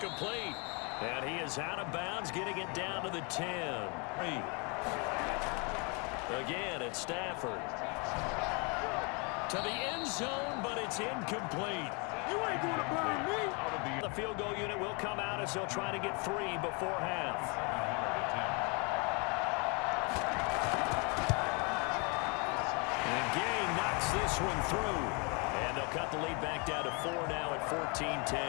And he is out of bounds, getting it down to the 10. Again, it's Stafford. To the end zone, but it's incomplete. You ain't going to blind me. The field goal unit will come out as they'll try to get 3 before half. And Gang knocks this one through. And they'll cut the lead back down to 4 now at 14-10.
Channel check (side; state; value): right; quieter; 32.6 dB